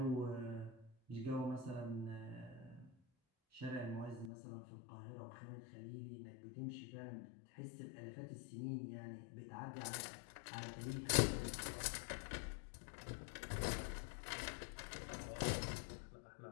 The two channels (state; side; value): drops out; right; at 4.3 s